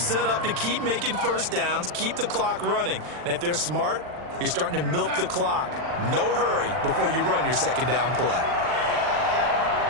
up to keep making first downs, keep the clock running. And if they're smart, you're starting to milk the clock. No hurry before you run your 2nd down play.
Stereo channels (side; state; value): left; late; 40 ms